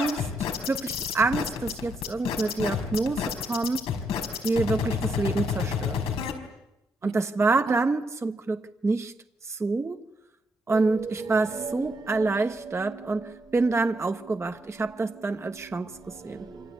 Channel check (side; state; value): both; normal; correlation 0.78